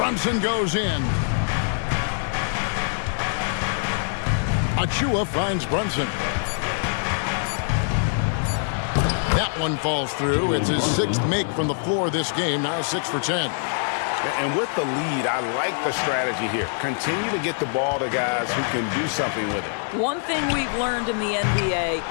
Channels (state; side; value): silent; right; digital silence